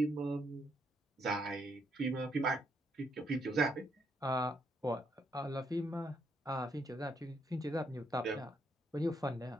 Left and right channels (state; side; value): normal; both; correlation 0.75